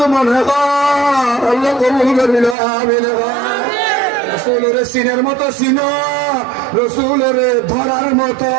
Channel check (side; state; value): left; drops out; at 2.6 s